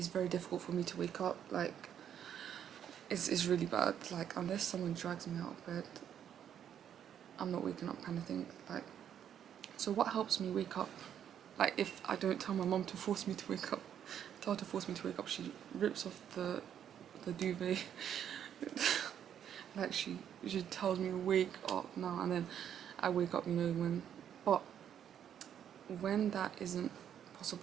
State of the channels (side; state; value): left; quieter; 9.3 dB